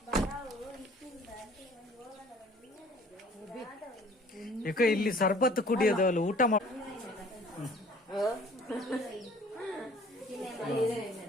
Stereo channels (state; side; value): normal; both; correlation 0.53